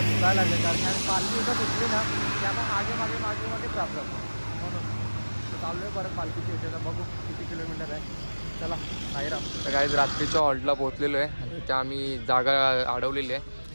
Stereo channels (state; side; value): inverted; both; correlation -1.00